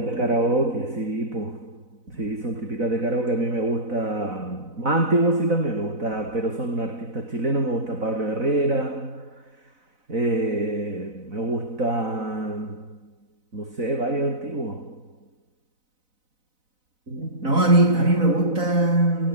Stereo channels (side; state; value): left; late; 4.0 ms